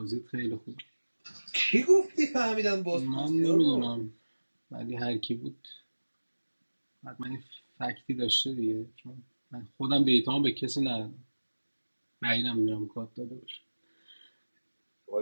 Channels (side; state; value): both; inverted; correlation -1.00